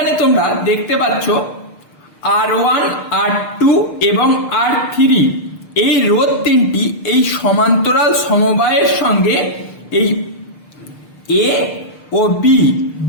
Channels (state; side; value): late; right; 6.6 ms